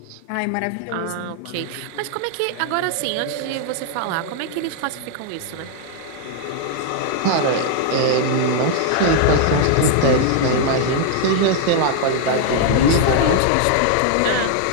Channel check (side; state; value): both; different; correlation -0.01